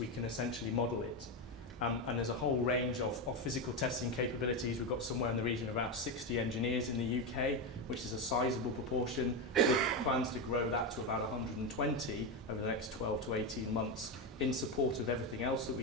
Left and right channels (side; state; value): both; normal; correlation 0.12